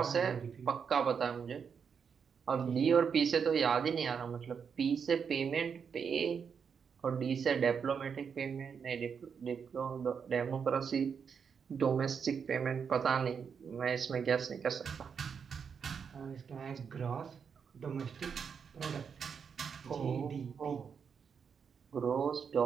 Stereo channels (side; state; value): left; quieter; 6.6 dB